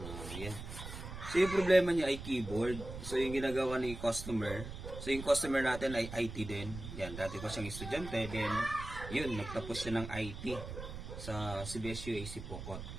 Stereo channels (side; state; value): right; noise; rumble, 9 dB below the sound